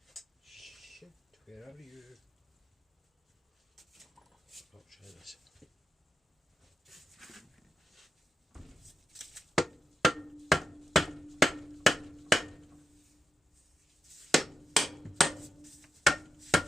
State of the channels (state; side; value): normal; both; correlation 0.87